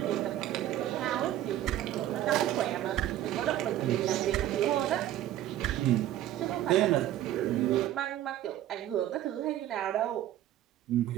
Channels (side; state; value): left; quieter; 12.9 dB